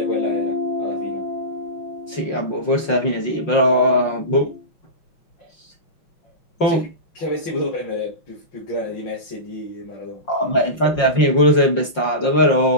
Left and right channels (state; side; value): late; right; 5.6 ms